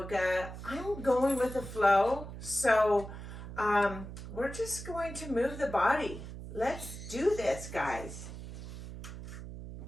I'm going with the flow, so we're just going to move the body. Let's do this, guys.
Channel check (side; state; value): right; noise; hum, 11 dB below the sound